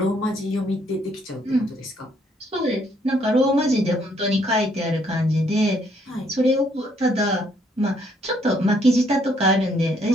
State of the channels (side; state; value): both; normal; correlation 0.68